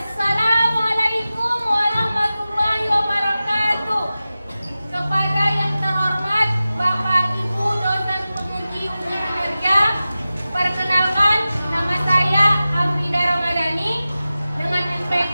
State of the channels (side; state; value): both; inverted; correlation -0.95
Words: warahmatullahi wabarakatuh. Kepada yang terhormat Bapak Ibu dosen penguji ujian kinerja, perkenalkan nama saya Afrida Ramadhani dengan